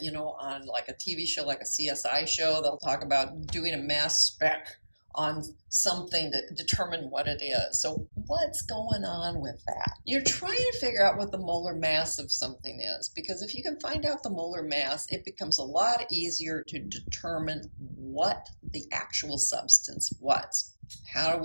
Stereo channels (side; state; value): both; inverted; correlation -1.00